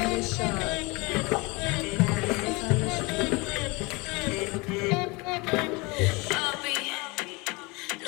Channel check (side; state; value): right; quieter; 26.1 dB